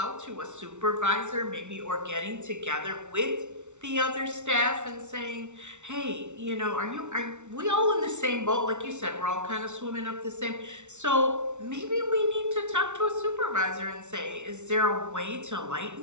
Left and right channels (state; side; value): late; left; 0.83 ms